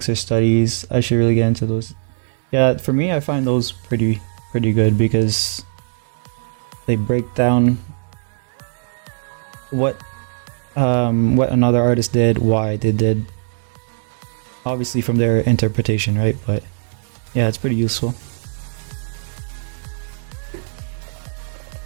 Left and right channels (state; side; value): silent; left; 66 dB below the other